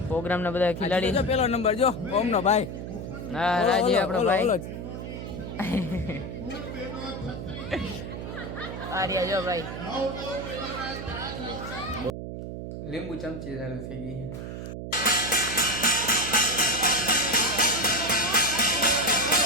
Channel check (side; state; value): right; noise; hum, 7 dB below the sound